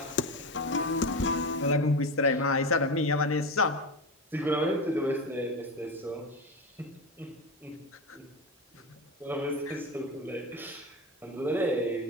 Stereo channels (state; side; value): normal; both; correlation 0.21